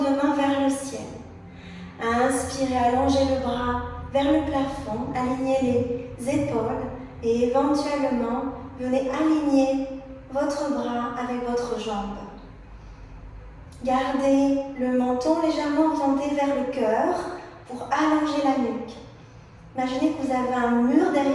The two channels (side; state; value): both; identical; correlation 1.00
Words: main vers le ciel. Inspirez, allongez le bras vers le plafond. Alignez les épaules et éventuellement, venez aligner votre bras avec votre jambe. Gardez le menton légèrement orienté vers le cœur pour allonger la nuque. Imaginez que vous avez un mur